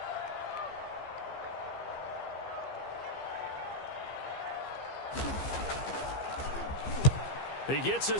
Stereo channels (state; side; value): late; right; 15 ms